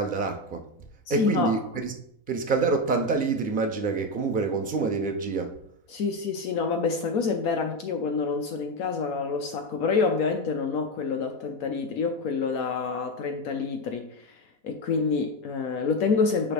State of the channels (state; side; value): late; right; 4.2 ms